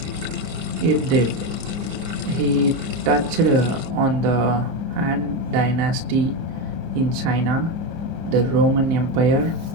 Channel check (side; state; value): left; late; 30 ms